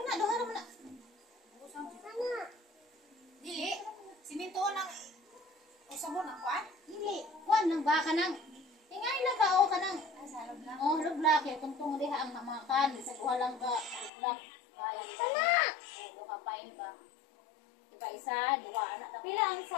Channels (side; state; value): right; drops out; at 14.1 s